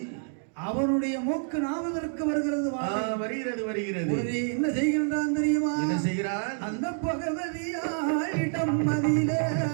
அவனுடைய மூக்கு நாவதற்கு வருகிறது என்ன செய்கின்றான் தெரியுமா? என்ன செய்கிறான்? அந்த பகவதியாள் இடமதிலே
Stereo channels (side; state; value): left; silent; digital silence